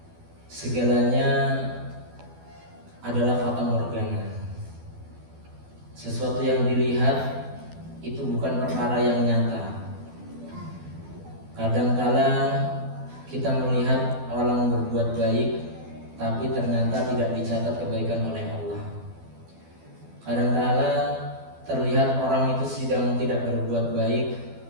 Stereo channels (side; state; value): left; late; 12 ms